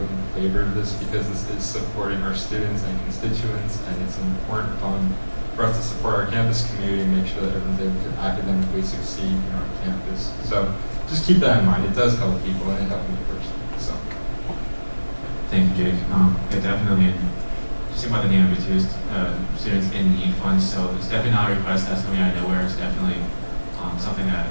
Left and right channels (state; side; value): inverted; both; correlation -1.00